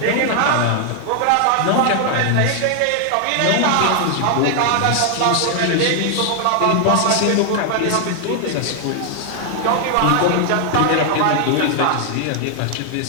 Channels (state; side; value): different; both; correlation 0.00